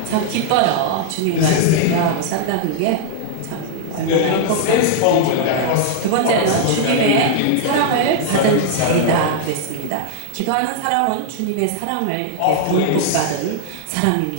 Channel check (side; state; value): both; different; correlation -0.01